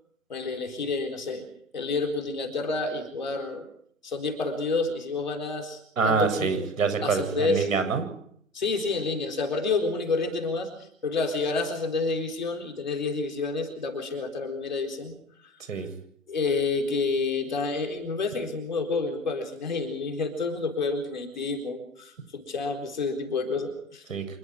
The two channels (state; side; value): normal; both; correlation 0.38